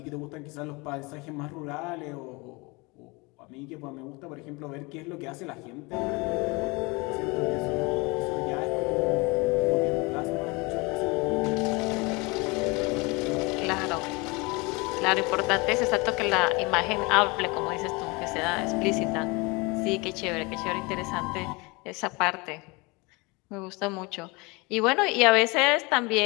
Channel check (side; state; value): right; quieter; 26.7 dB